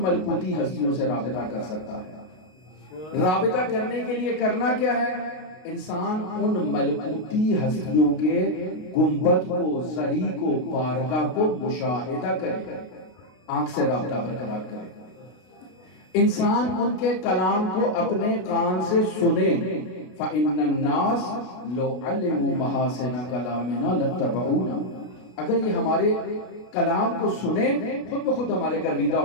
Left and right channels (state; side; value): late; right; 32 ms